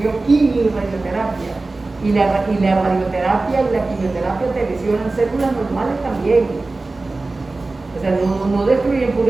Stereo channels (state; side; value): quieter; left; 3.3 dB